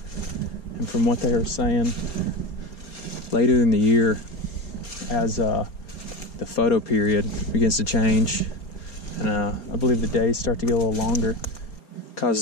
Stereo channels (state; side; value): late; right; 4.3 ms